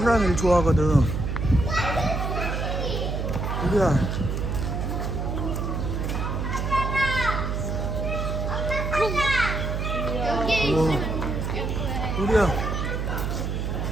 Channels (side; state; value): right; noise; hum, 1 dB below the sound